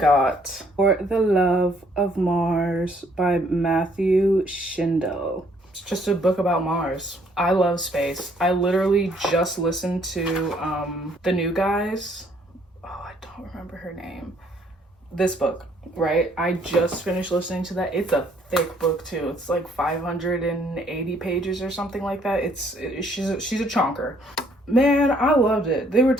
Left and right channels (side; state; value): both; normal; correlation 0.65